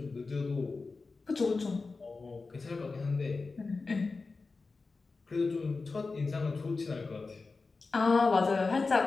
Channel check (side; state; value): right; quieter; 4.0 dB